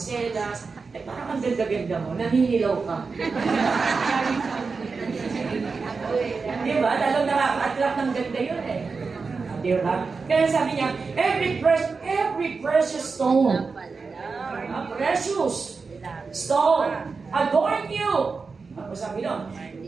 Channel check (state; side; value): quieter; left; 4.6 dB